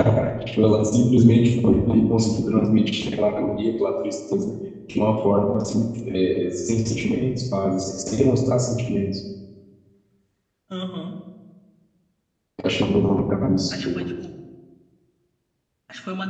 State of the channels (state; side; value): identical; both; correlation 1.00